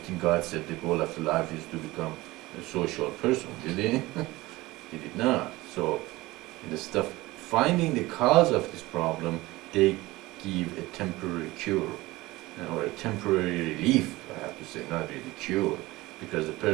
think God said the goal of life is to become a social person, did He? He did not. So, instead of finding the cause of this problem, they give a temporary cure or a temporary relief, I have to say, not really cure, because the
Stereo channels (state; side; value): quieter; left; 19.7 dB